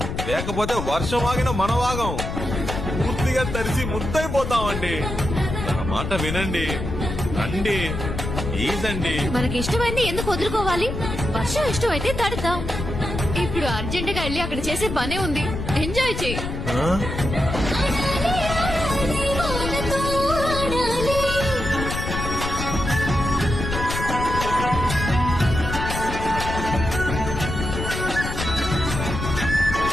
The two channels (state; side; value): noise; left; rumble, 5 dB below the sound